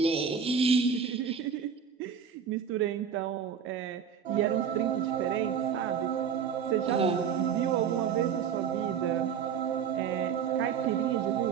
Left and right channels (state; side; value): quieter; left; 7.3 dB